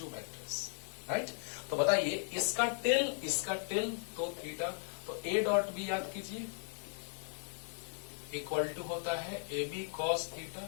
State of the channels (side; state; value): right; silent; 53 dB below the other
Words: vectors, right. तो बताइए इसका tell तो theta, तो ए dot B याद कीजिए equal to होता है A B cos